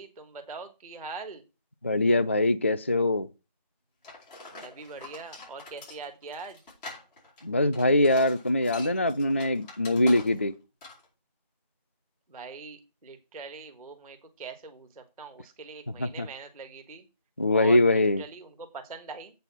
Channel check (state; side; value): inverted; both; correlation -0.74